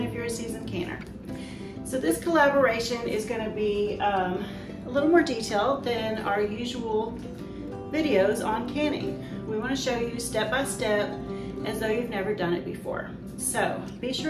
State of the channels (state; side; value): identical; both; correlation 1.00